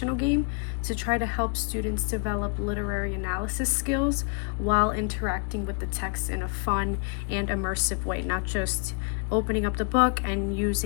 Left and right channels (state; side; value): quieter; right; 37.2 dB